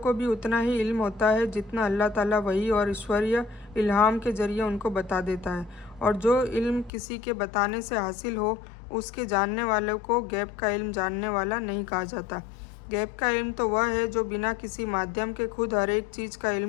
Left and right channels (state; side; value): drops out; right; at 6.9 s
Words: भी उतना ही इल्म होता है जितना अल्लाह ताला वही और ईश्वरीय इल्हाम के ज़रिए उनको बता देता है। और जो इल्म किसी के बताने से हासिल हो, उसके जानने वालों को गैब का इल्म जानने वाला नहीं कहा जाता। गैब का इल्म तो वह है जो बिना किसी माध्यम के खुद हर एक चीज़ का